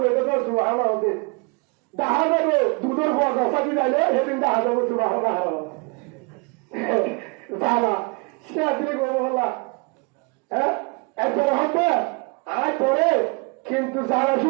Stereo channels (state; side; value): quieter; left; 31.0 dB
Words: তো সুবহানাল্লাহ হতে দেখা যাবে দুধের পর রসাদি যাইলে সেদিন দেখা যাবে সুবাহ যাবা সে আসলে করবো হল্লা হ্যাঁ একজন হবে আয় করে কিন্তু যারা